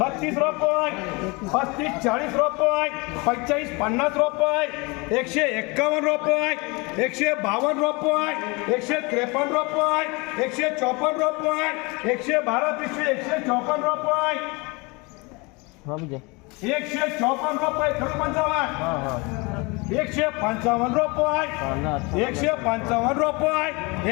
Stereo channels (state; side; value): quieter; right; 27.2 dB